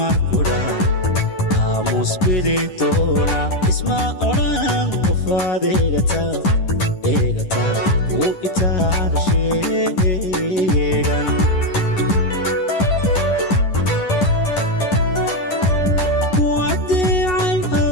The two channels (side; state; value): right; late; 10 ms